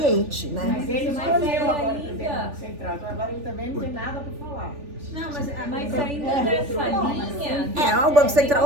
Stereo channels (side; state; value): left; late; 3.4 ms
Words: né? Mas ele escolheu agora o presidente do Banco Central, então agora ele também não tem nada para falar. Não, mas ainda nessa linha... O Banco